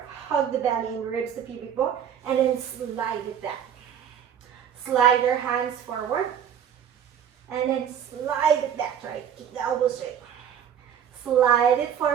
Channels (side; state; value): left; quieter; 8.8 dB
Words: hug the belly and ribs, the pubic bone, and then slide it back. Slide your hands forward, and then slide it back, right? Keep the elbows straight. Slide it